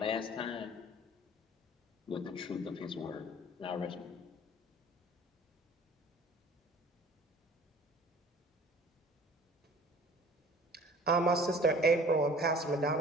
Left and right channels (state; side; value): normal; both; correlation 0.48